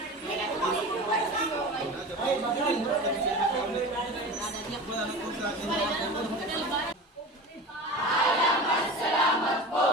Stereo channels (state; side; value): normal; both; correlation 0.32